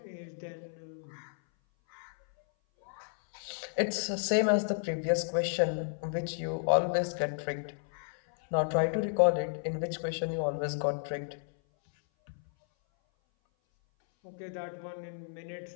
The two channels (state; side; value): silent; right; 56 dB below the other